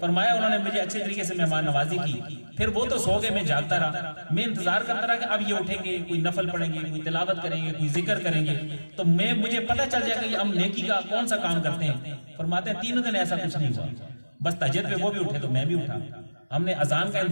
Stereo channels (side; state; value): both; inverted; correlation -1.00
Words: انہوں نے مجھے اچھے طریقے سے مہمان نوازی کی، پھر وہ تو سو گئے، میں جاگتا رہا، میں انتظار کرتا رہا کہ اب یہ اٹھیں گے، کوئی نفل پڑھیں گے، کوئی تلاوت کریں گے، کوئی ذکر کریں گے، تو مجھے پتہ چل جائے گا کہ ہم نیکی کا کون سا کام کرتے ہیں۔ فرماتے ہیں 3 دن ایسا کچھ نہیں ہوا، بس تہجد پہ وہ بھی اٹھے تو میں بھی اٹھا، ہم نے اذان کا